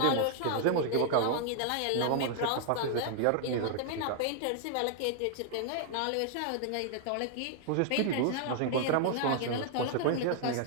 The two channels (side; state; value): both; different; correlation 0.00